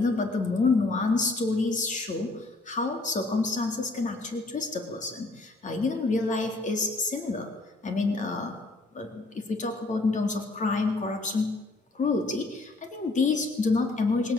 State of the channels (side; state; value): right; quieter; 3.2 dB